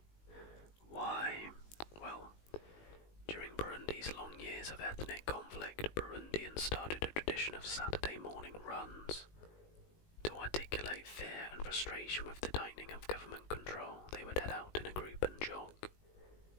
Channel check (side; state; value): right; late; 19 ms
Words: Why? Well, during Burundi's long years of ethnic conflict, Burundians started a tradition of Saturday morning runs. To articulate fear and frustration with the tightening of government control, they would head out in a group and jog.